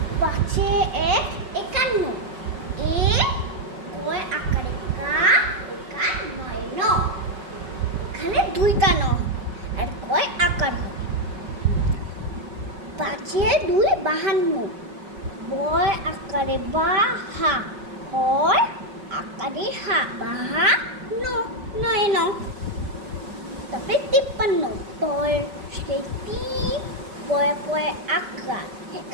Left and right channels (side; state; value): left; late; 5.3 ms